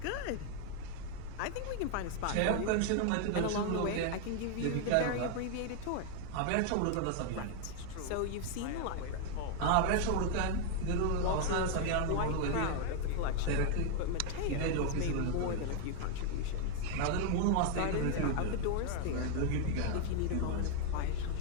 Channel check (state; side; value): different; both; correlation 0.00